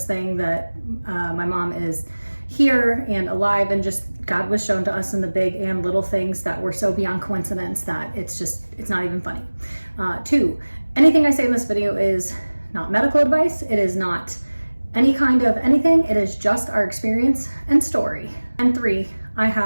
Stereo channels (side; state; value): both; inverted; correlation -1.00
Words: thing that my mom is here and alive, and just God was shown to us in the big and little things that were so beyond coincidence that it's not even funny. Two, anything I say in this video is not medical advice. It is not any kind of anything. It is just our experience and story. And three, I